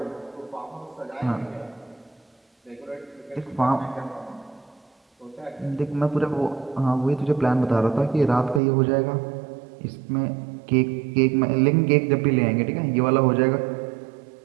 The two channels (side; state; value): left; drops out; at 8.6 s